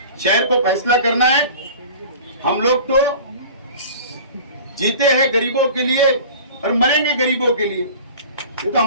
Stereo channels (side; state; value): both; inverted; correlation -0.41